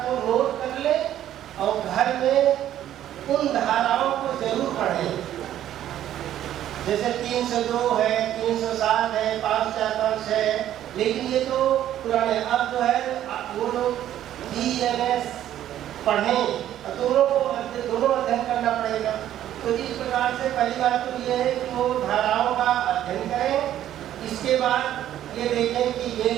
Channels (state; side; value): quieter; left; 11.8 dB